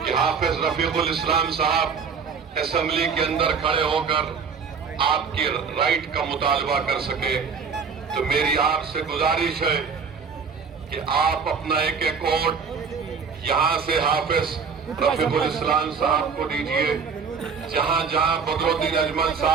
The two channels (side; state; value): left; quieter; 5.8 dB